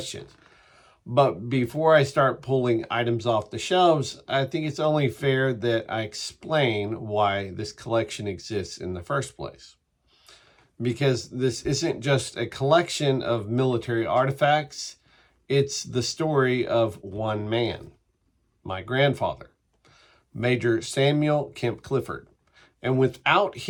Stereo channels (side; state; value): both; identical; correlation 1.00